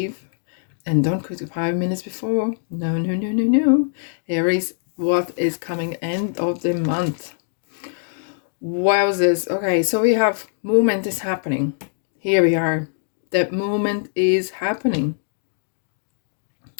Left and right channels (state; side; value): silent; right; digital silence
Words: And don't quit 5 minutes before. No. Aries, what is coming end of the month? Wowzers. Okay, so we have movement is happening. Here we are. The movement is happening.